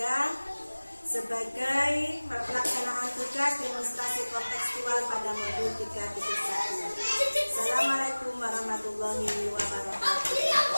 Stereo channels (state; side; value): inverted; both; correlation -1.00